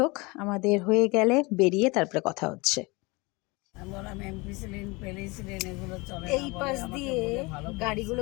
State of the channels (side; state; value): right; quieter; 25.4 dB